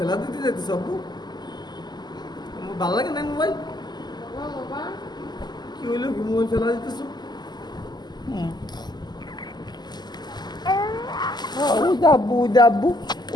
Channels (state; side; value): late; right; 0.21 ms